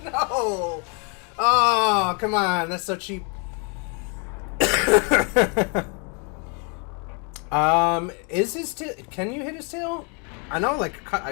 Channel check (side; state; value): right; quieter; 35.9 dB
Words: No! Oh, come on. That's so cheap. Is his tail... Can you hit his tail? I know, like,